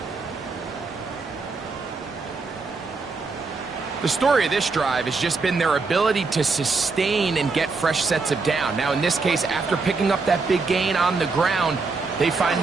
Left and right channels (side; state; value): left; quieter; 4.2 dB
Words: The story of this drive has just been their ability to sustain and get fresh sets of down. Now, in this case, after picking up that big gain on the ground, they find